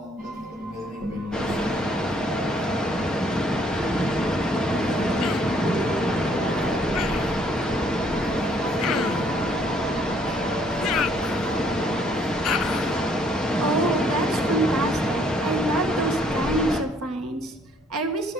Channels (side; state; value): both; normal; correlation 0.64